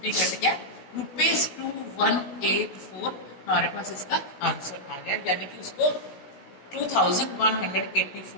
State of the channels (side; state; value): right; late; 17 ms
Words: कट गया, ₹2184 हमारे पास इसका आंसर आ गया, यानी कि उसको